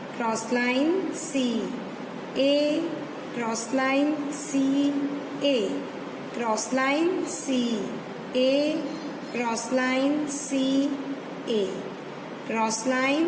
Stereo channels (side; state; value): both; identical; correlation 1.00